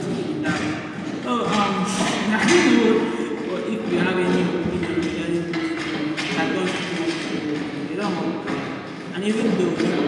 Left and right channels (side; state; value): both; identical; correlation 1.00